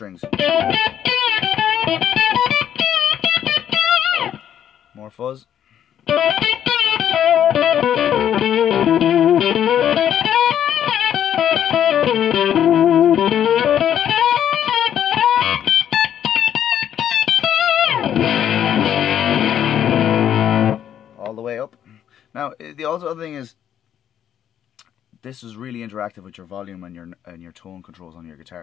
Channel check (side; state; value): right; quieter; 10.0 dB